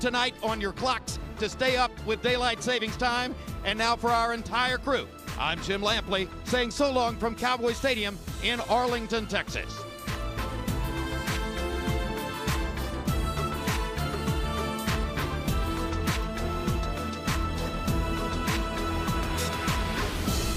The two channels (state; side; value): identical; both; correlation 1.00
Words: tonight on your clocks to stay up with daylight savings time. And now for our entire crew, I'm Jim Lampley saying so long from Cowboy Stadium in Arlington, Texas.